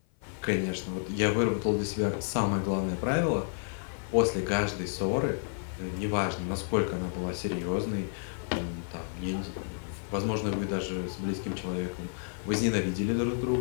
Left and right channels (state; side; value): silent; right; 55 dB below the other